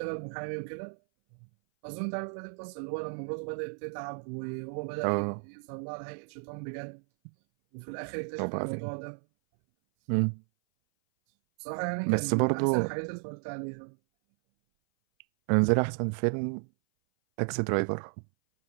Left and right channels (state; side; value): silent; left; 56 dB below the other